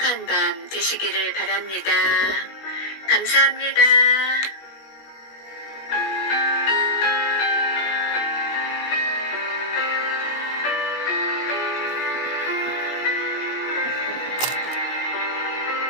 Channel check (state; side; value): late; right; 16 ms